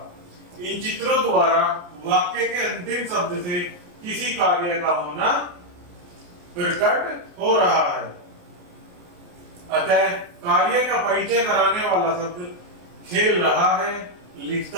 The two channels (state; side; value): late; left; 28 ms